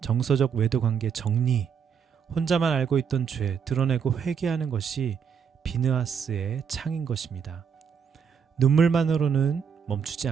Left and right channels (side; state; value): left; quieter; 6.9 dB